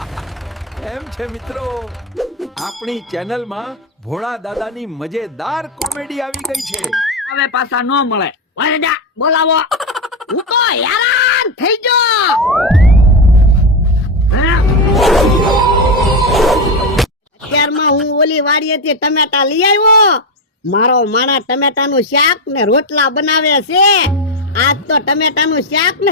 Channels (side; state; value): both; normal; correlation 0.11